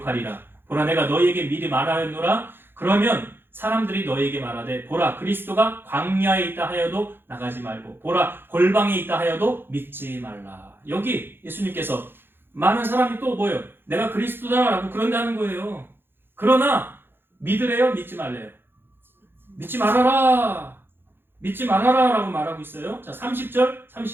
보라 내가 너희에게 미리 말하였노라. 그러면 사람들이 너희에게 말하되 보라 그리스도가 광야에 있다 하여도 나가지 말고 보라 골방에 있다 하여도 믿지 말라. 여기 예수님께서 많은 사람이 또 뭐예요? 내가 그리스도다라고 그런다는 거예요. 그러나 믿으래요? 믿지 말래요? 믿지 말아라. 믿지 말아라 라고 말하고 있어요. 자, 30절,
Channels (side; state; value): left; late; 0.10 ms